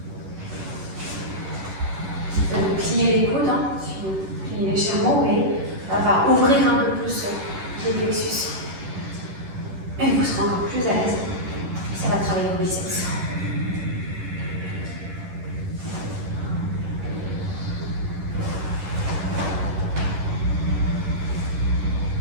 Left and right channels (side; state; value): left; late; 11 ms